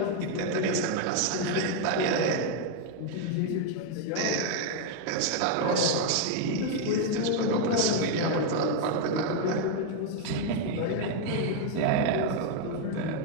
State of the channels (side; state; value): both; different; correlation 0.01